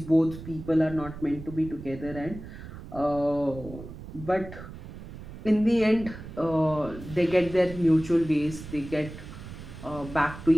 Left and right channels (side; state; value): right; noise; rumble, 13 dB below the sound